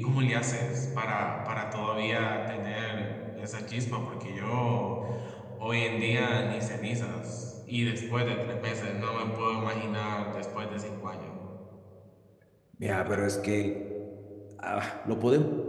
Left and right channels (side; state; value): both; identical; correlation 1.00